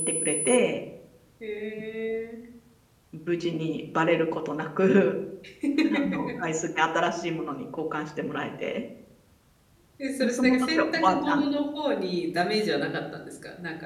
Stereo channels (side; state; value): both; identical; correlation 1.00